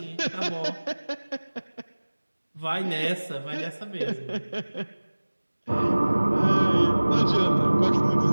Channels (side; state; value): both; inverted; correlation -1.00